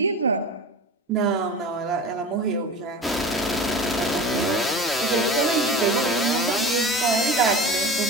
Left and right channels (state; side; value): normal; both; correlation 0.33